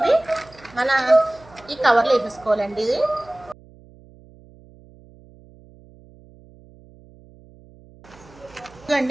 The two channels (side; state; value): right; noise; hum, 25 dB below the sound